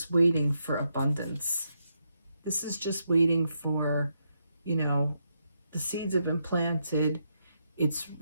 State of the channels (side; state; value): both; inverted; correlation -0.81